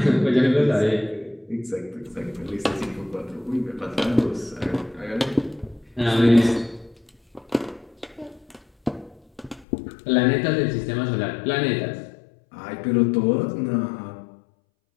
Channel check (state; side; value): drops out; right; at 9.7 s